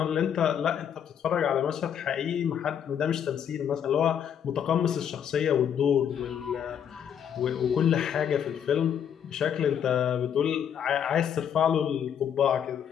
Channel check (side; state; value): right; quieter; 8.7 dB